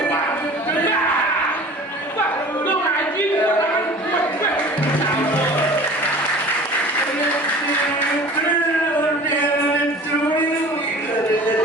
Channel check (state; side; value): normal; both; correlation 0.42